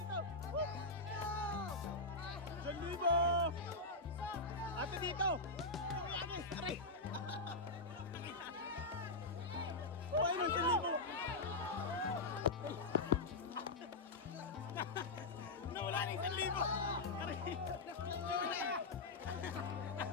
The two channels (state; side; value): quieter; right; 3.2 dB